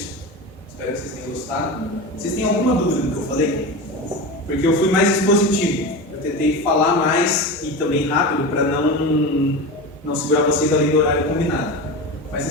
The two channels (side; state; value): both; normal; correlation 0.25